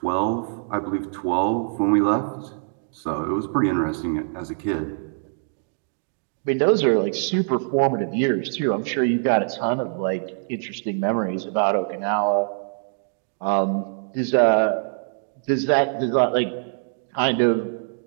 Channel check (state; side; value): silent; left; digital silence